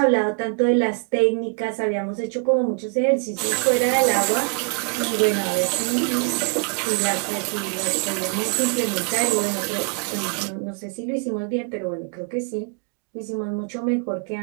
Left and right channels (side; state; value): left; quieter; 38.1 dB